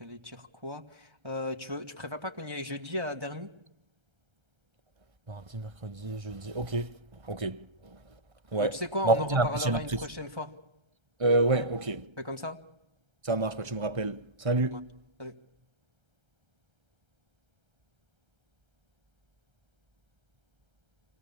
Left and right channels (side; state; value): left; late; 1.3 ms